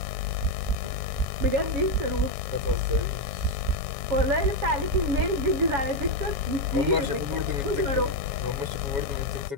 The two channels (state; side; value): late; left; 7.2 ms